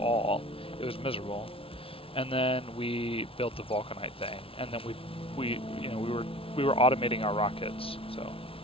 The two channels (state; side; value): late; right; 0.26 ms